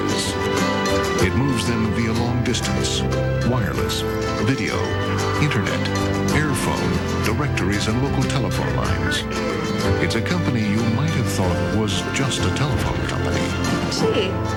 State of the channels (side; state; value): both; identical; correlation 1.00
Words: It moves them via long distance, wireless, video, internet, airphone, directories, and local telephone lines. It's a company you might have thought was just a telephone company. Gee.